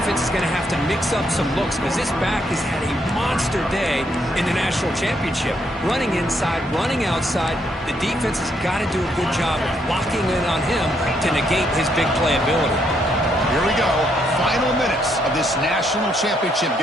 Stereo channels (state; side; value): normal; both; correlation 0.74